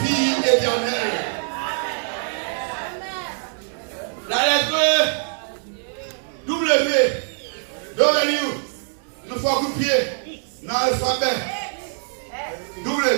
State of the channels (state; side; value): silent; left; 56 dB below the other